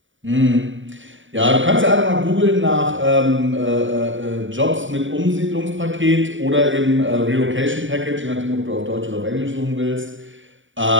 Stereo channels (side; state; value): left; late; 0.56 ms